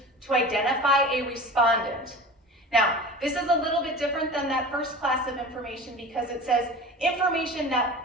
to identify a respondent. Now, this is a little bit different than that first class of information because it says information that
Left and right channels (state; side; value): normal; both; correlation 0.35